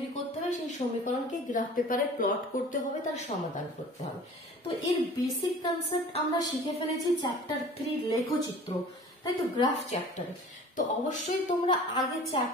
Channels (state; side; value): normal; both; correlation 0.44